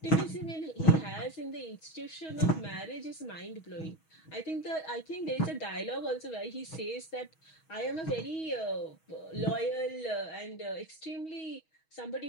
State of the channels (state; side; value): late; right; 6.3 ms